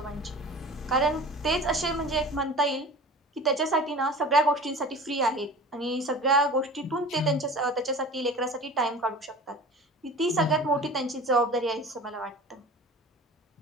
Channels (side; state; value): both; normal; correlation 0.38